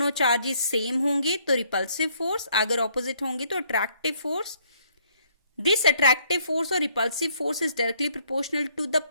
चार्जेस सेम होंगे तो रिपल्सिव फोर्स, अगर ऑपोजिट होंगे तो attractive force. This attractive force और repulsive force is directly proportional to the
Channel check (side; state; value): both; inverted; correlation -0.66